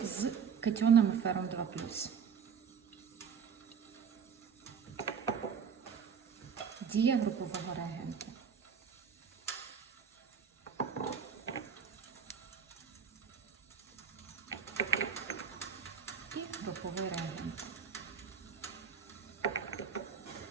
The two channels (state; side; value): quieter; left; 6.9 dB